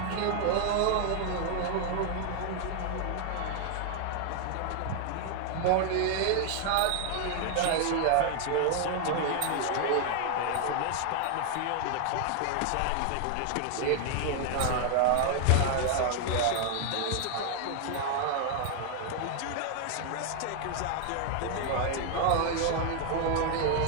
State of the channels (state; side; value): different; both; correlation 0.00